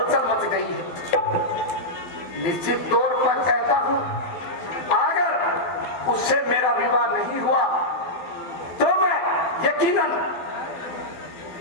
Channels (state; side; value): late; right; 12 ms